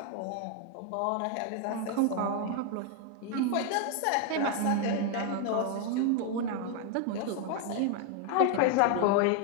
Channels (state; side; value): different; both; correlation 0.01